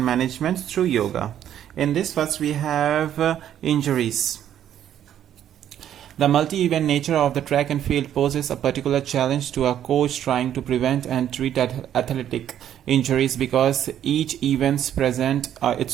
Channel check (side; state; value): left; quieter; 10.5 dB